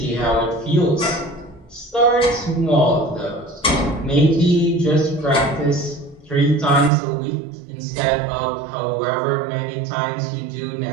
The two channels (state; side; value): drops out; left; at 6.9 s